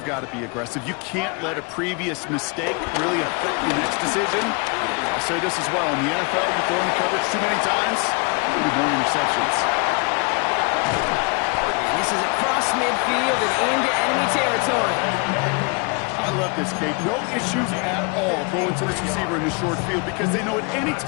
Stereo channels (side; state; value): right; quieter; 31.1 dB